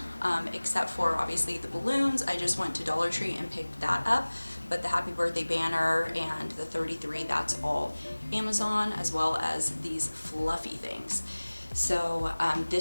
except for obviously the balloons. I just went to Dollar Tree and picked that up. But the happy birthday banner and the 33, that's all Amazon, as well as these fluffy things. So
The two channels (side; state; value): both; inverted; correlation -1.00